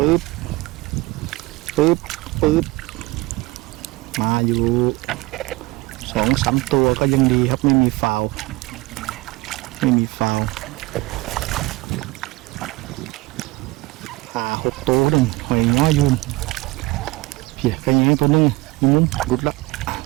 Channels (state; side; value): quieter; left; 21.9 dB